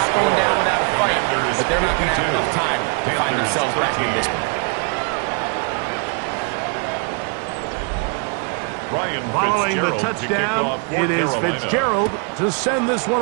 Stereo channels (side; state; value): left; quieter; 36.9 dB